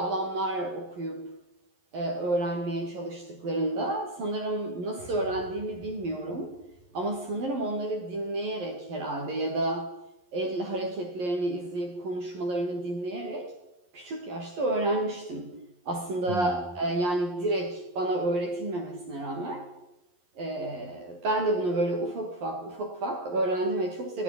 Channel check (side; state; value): left; late; 11 ms